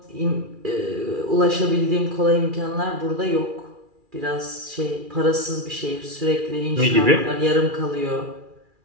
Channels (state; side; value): late; left; 2.4 ms